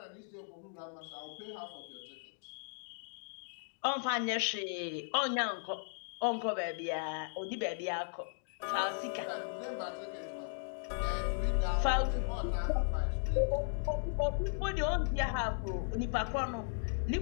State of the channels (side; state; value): right; silent; digital silence